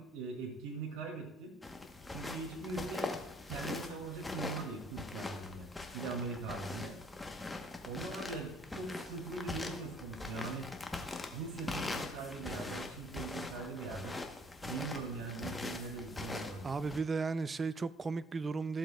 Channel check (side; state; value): both; normal; correlation 0.61